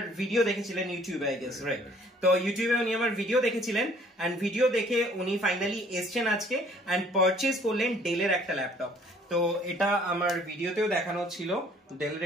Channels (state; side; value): normal; both; correlation 0.57